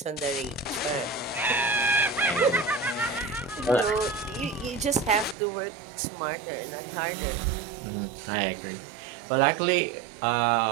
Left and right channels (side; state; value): left; drops out; at 5.4 s